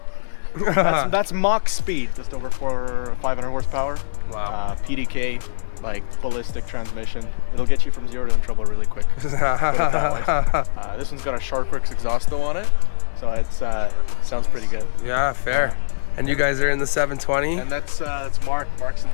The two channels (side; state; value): right; silent; digital silence